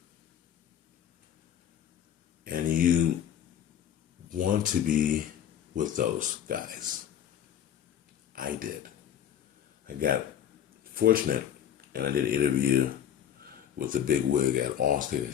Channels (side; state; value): right; quieter; 9.8 dB